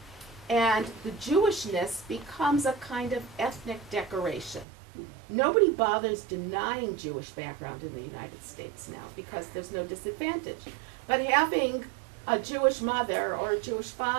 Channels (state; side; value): drops out; left; at 4.7 s